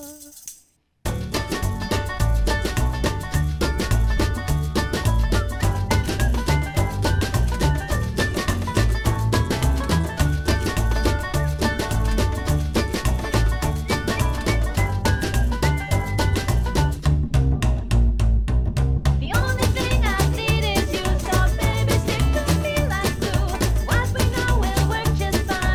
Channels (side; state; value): both; identical; correlation 1.00